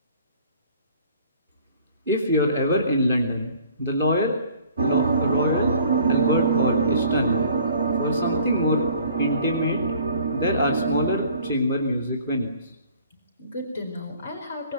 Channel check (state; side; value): inverted; both; correlation -0.54